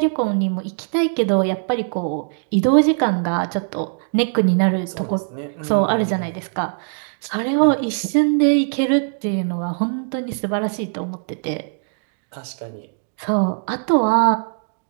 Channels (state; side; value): silent; left; digital silence